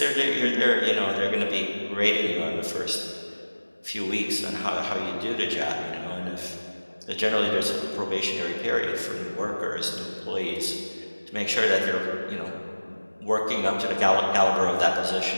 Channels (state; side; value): inverted; both; correlation -1.00